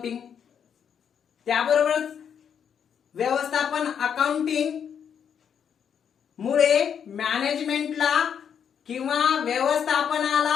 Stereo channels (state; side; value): quieter; right; 7.9 dB